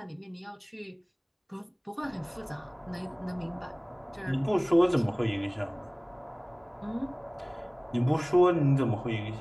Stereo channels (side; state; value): both; identical; correlation 1.00